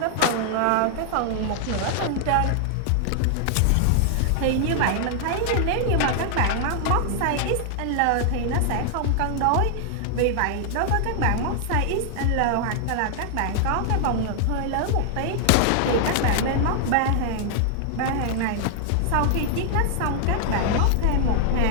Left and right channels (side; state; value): both; different; correlation 0.00